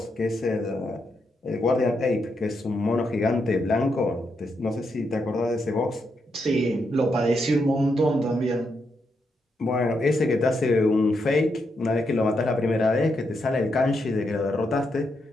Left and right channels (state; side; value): normal; both; correlation 0.81